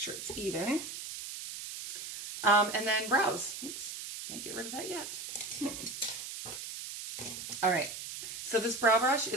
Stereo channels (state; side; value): noise; right; hiss, 8 dB below the sound